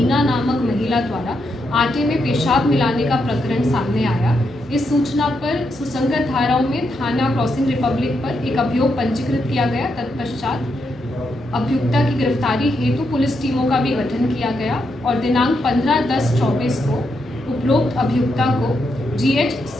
नामक महिला द्वारा आटे में पेशाब मिलाने का प्रकरण सामने आया। इस सूचना पर सुसंगत धाराओं में थाना क्रॉसिंग रिपब्लिक पर एक अभियोग पंजीकृत किया गया। तत्पश्चात अभियुक्ता की गिरफ्तारी हेतु पुलिस टीमों का भी गठन किया गया और दिनांक 15/10/24 को उपरोक्त अभियुक्ता को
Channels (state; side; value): normal; both; correlation 0.81